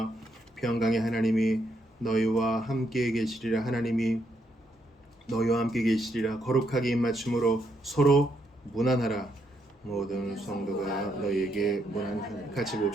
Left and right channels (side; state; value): both; normal; correlation 0.76